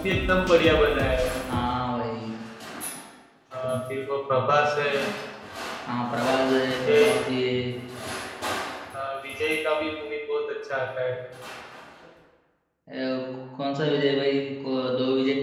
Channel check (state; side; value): identical; both; correlation 1.00